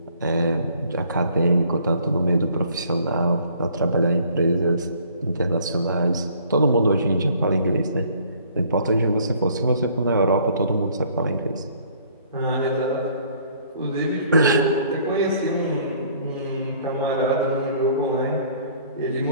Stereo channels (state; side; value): inverted; both; correlation -0.58